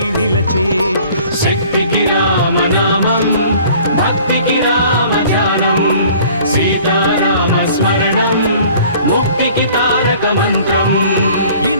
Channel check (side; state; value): both; inverted; correlation -0.51